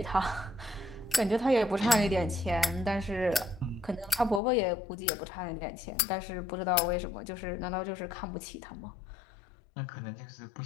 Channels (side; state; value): right; drops out; at 4.4 s